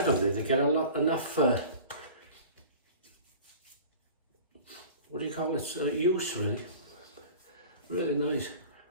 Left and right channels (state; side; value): inverted; both; correlation -0.41